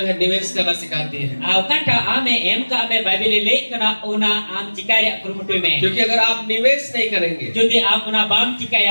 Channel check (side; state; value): both; inverted; correlation -1.00